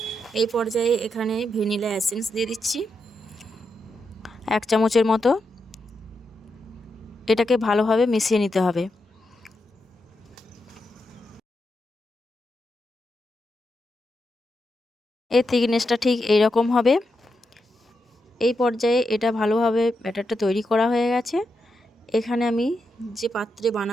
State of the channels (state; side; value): normal; both; correlation 0.85